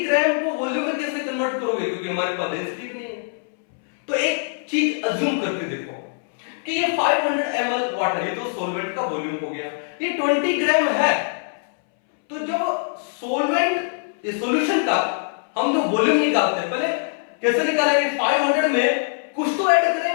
ग्राम को वॉल्यूम में कैसे कन्वर्ट करोगे, क्योंकि हमारे पास डेंसिटी नहीं है। तो एक चीज अज्यूम करके देखो कि ये 500 ml वाटर, ये तो सॉल्वेंट का वॉल्यूम हो गया, ये 20 ग्राम है। तो जब सॉल्वेंट इस सॉल्यूशन का हम जो वॉल्यूम निकालते हैं, पहले कैसे निकालेंगे? 500 में कुछ तो ऐड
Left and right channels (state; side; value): silent; right; 63 dB below the other